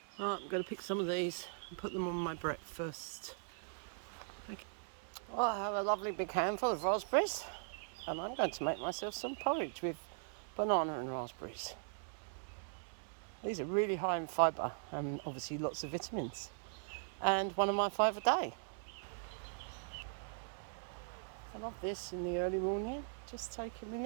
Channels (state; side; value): silent; left; digital silence